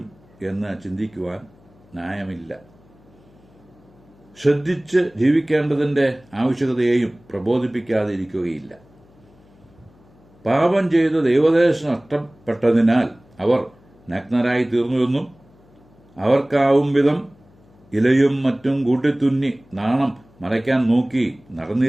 എന്ന് ചിന്തിക്കുവാൻ ന്യായമില്ല. ശ്രദ്ധിച്ച് ജീവിക്കേണ്ടതിന്റെ ആവശ്യകതയെയും പ്രബോധിപ്പിക്കാതെ ഇരിക്കുകയില്ല. പാപം ചെയ്ത് ദൈവദേശം നഷ്ടപ്പെട്ടതിനാൽ അവർ നഗ്നരായി തീർന്നുവെന്നും അവർക്കാവും വിധം ഇലയും മറ്റും കൂട്ടിത്തുന്നി നാണം മറയ്ക്കാൻ നോക്കി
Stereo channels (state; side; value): noise; left; hum, 29 dB below the sound